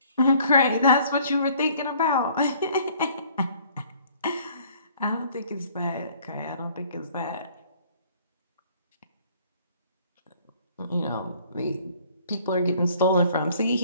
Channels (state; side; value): inverted; both; correlation -0.57